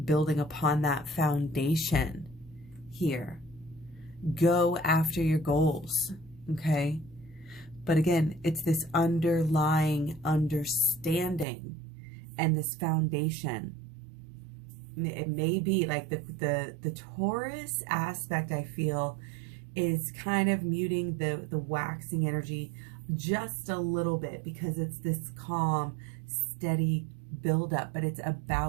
foundation here. Go after your goals, okay? But again, it's this underlying understanding and this foundation. It may be like the Taurus aspect, I feel, is kind of muting the waxing energy just a little bit, because it's this calm, steady buildup, but it's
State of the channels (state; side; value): drops out; left; at 11.5 s